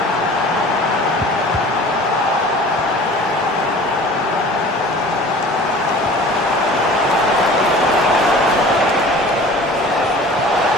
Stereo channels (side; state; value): both; normal; correlation 0.44